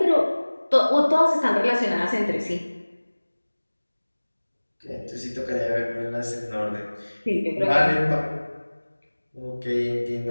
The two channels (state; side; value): inverted; both; correlation -1.00